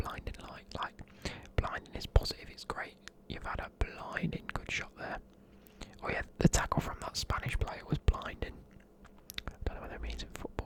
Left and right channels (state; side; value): identical; both; correlation 1.00